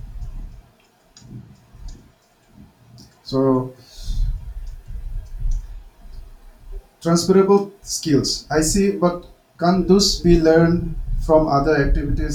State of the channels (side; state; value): both; identical; correlation 1.00